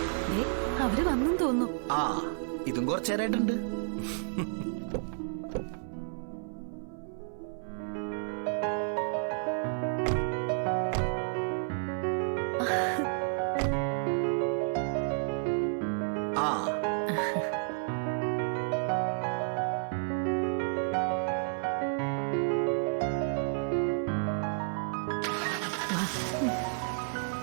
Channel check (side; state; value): left; silent; 57 dB below the other